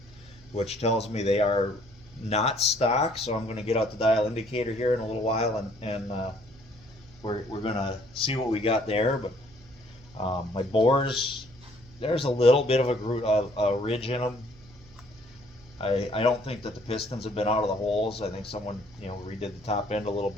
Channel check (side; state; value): right; noise; hum, 24 dB below the sound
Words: which tells me they are not stock. So I'm going to get out the dial indicator here in a little while, and we're going to see what we got there. But my bores, there's a little bit of a ridge in them. I don't think that the pistons have been out of the holes. I think someone redid the top end a little